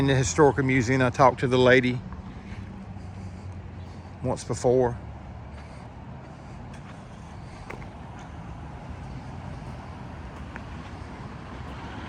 the historical museum. I talked to the lady once before.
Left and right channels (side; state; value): both; identical; correlation 1.00